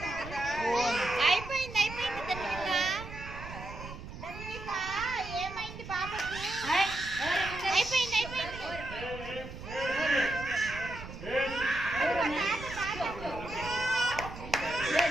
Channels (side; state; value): right; noise; rumble, 11 dB below the sound